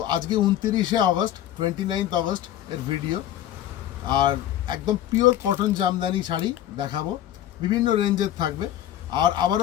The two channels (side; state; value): right; quieter; 12.1 dB